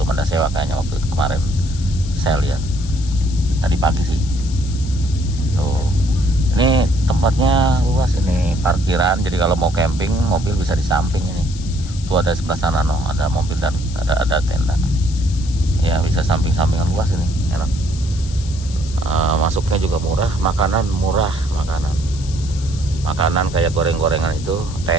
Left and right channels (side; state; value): left; noise; hiss, 16 dB below the sound